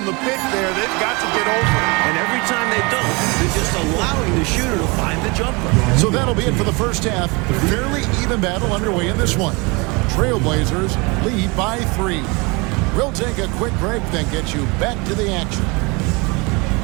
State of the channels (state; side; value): quieter; left; 27.6 dB